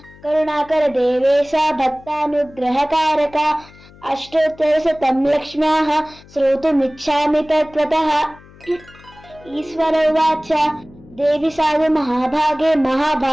కరుణాకర దేవేశ భక్తానుగ్రహకారక అష్టోత్తరశతం లక్ష్మ్యాః శ్రోతుమిచ్ఛామి తత్వతః. ఈశ్వర ఉవాచ. దేవి సాధు మహాభాగే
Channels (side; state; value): left; noise; hum, 23 dB below the sound